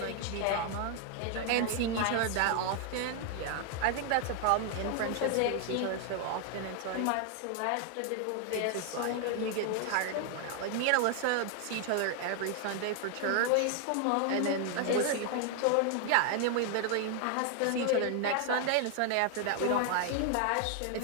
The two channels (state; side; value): different; both; correlation 0.00